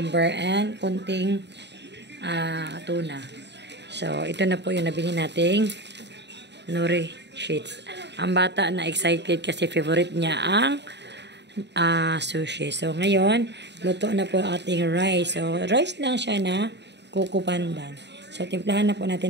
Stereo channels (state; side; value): late; left; 0.50 ms